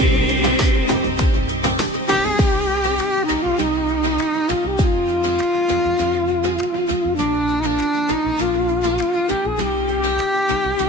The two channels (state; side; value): normal; both; correlation 0.48